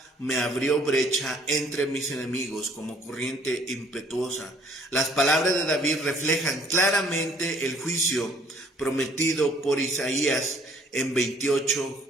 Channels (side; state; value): both; normal; correlation 0.59